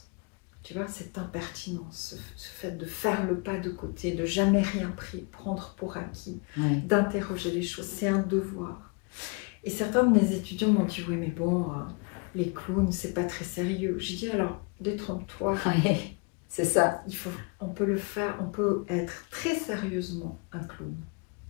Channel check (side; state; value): right; quieter; 33.0 dB